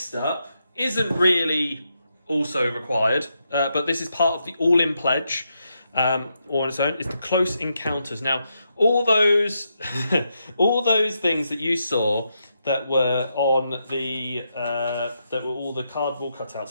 up isn't really also required, but this is part of the all-in pledge. Or on its own, is the close encounters. Now, all those all those things that you saw that were on the that were all the cardboard cutouts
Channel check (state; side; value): inverted; both; correlation -0.82